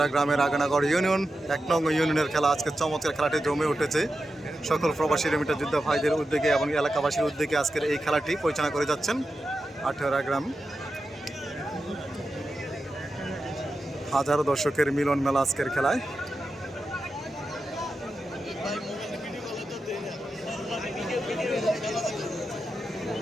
গ্রামের আগানাগড় ইউনিয়ন ১ নং ইউনিয়নের খেলা। আজকের চমৎকার খেলাটি জমে উঠেছে। সকল প্রবাসী রেমিটার যোদ্ধা ভাইদের উদ্যোগে এবং এলাকাবাসীর উদ্যোগে আজকের এই খেলাটি পরিচালনা করে যাচ্ছেন আটিয়ারা গ্রাম। হাজারো দর্শকের মিলন মেলা আজকের খেলায়।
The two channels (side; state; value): both; normal; correlation 0.90